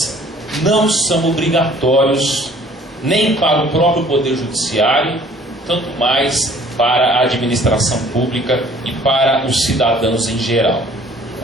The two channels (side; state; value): both; normal; correlation 0.54